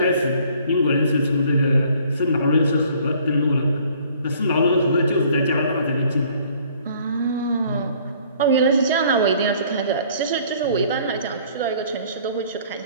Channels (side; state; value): both; inverted; correlation -0.57